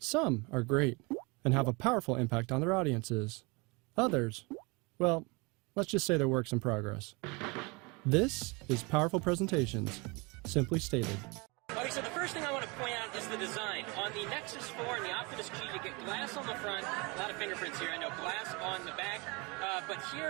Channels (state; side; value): quieter; left; 27.9 dB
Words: are great and have a powerful impact on their audiences. Others, well, let's just say they're works in progress. This is Powerful Presentations, simply stated. Okay, so the first thing I want to point out is the design. On the Nexus 4 and the Optimus G, you get glass on the front, a lot of fingerprints here, I know, glass on the back, but